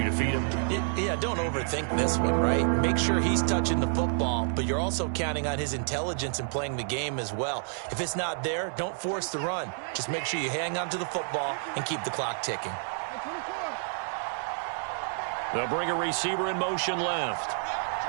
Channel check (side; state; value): left; silent; 58 dB below the other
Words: to feed him. Yeah, don't overthink this one, right? Make sure he's touching the football, but you're also counting on his intelligence in playing the game as well. If it's not there, don't force the run. Just make sure you hang on to the football and keep the clock ticking. They'll bring a receiver in motion left.